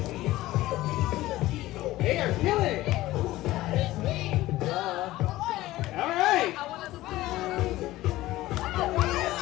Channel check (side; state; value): right; quieter; 16.7 dB